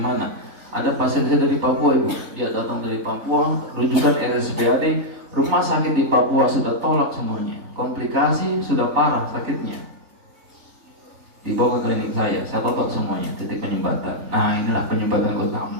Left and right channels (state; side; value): late; left; 3.3 ms